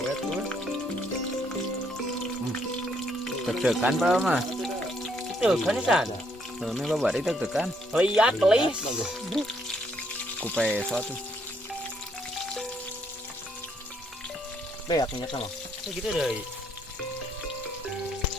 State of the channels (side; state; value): both; normal; correlation 0.71